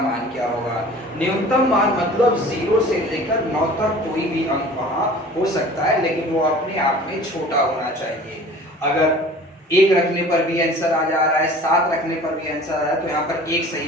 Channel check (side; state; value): both; normal; correlation 0.45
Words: क्या होगा। न्यूनतम मान मतलब 0 से लेकर 9 तक कोई भी अंक वहां हो सकता है, लेकिन वो अपने आप में छोटा होना चाहिए। अगर 1 रखने पर भी आंसर आ जा रहा है, 7 रखने पर भी आंसर आ रहा है, तो यहाँ पर 1